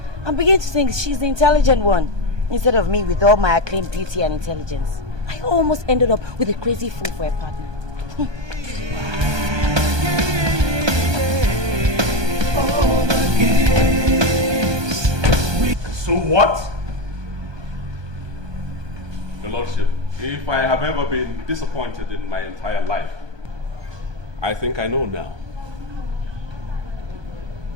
I'm beginning to think she's the intelligent one, instead of me with all my acclaimed beauty and intelligence. I almost ended up with a crazy fool for a partner. So what? Your Lordship, if I have ever been disappointed in my entire life, I think I know now.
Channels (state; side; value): late; left; 1.2 ms